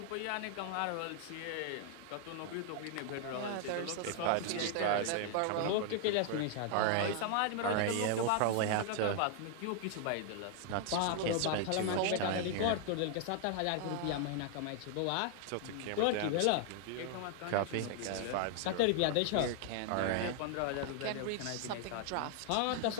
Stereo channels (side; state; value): both; different; correlation 0.00